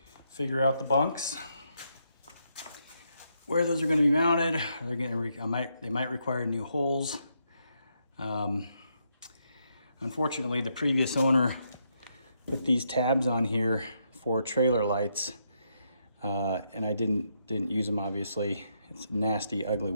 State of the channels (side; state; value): both; inverted; correlation -0.78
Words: figure out the bunks. where those are going to be mounted. They're going to they might require new holes. Unfortunately, the previous owner put these tabs on here for trailer lights, and I didn't use them. Obviously, it's nasty, ugly